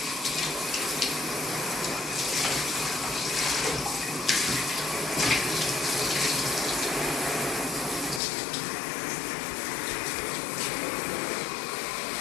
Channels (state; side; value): drops out; right; at 8.2 s